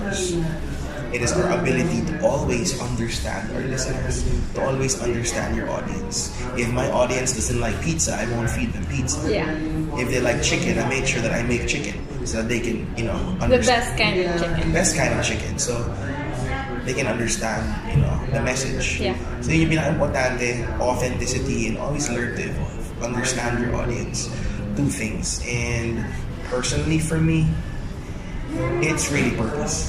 it is our ability to always understand our listeners, to always understand your audience. If my audience doesn't like pizza, I won't feed them pizza. Yeah. If they like chicken, I make sure that I make chicken so that they can, understand. The best kind of chicken. Best kind of chicken. So they can understand, the message. Yeah. So yun yung pinaka-importante, authenticity, and always learn to evolve. Understand your audience. Do things. And personally for me, it's really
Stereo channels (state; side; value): identical; both; correlation 1.00